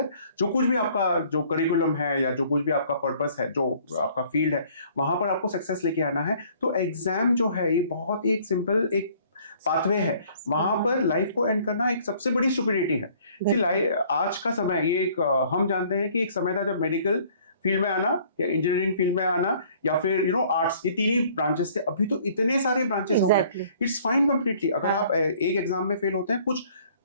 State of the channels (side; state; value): both; inverted; correlation -0.57